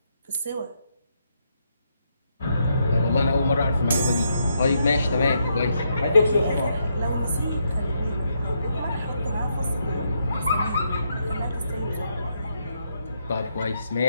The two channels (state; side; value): inverted; both; correlation -0.78